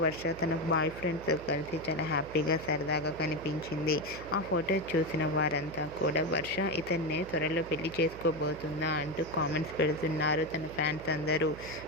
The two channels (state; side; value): noise; right; hum, 15 dB below the sound